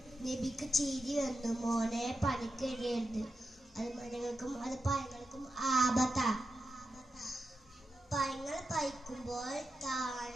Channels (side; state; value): both; normal; correlation 0.89